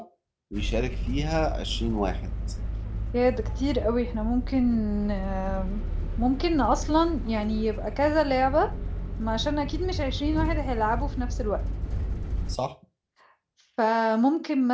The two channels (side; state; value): both; identical; correlation 1.00